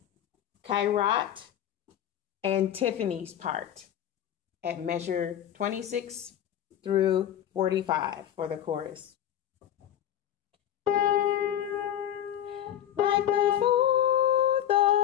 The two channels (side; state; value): right; quieter; 10.8 dB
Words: Kairat, and Tiffany's part at measure 26 through 45 for the chorus. Like the 4th